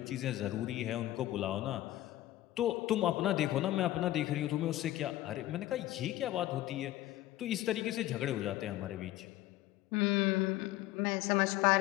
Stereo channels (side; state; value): right; quieter; 15.3 dB